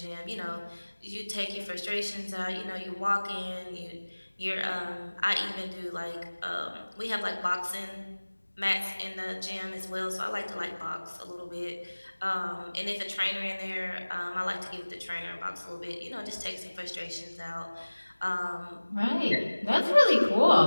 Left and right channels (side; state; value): both; inverted; correlation -1.00